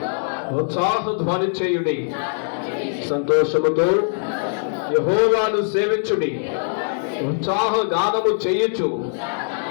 ఉత్సాహ ధ్వని చేయుడి, సంతోషముతో యెహోవాను సేవించుడి, ఉత్సాహ గానము చేయుచు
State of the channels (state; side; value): silent; right; digital silence